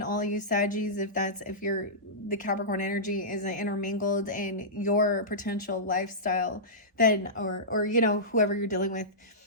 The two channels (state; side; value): normal; both; correlation -0.18